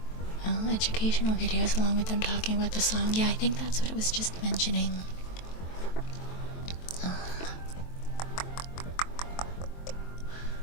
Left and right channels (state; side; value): late; right; 23 ms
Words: educational videos along with them talking about the song. Yeah, I think that's what it was just mentioning. I